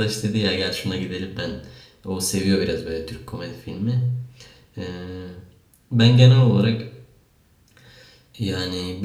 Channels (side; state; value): both; identical; correlation 1.00